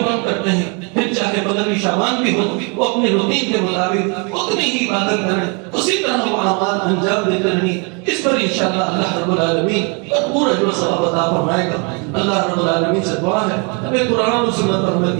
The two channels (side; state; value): left; quieter; 34.1 dB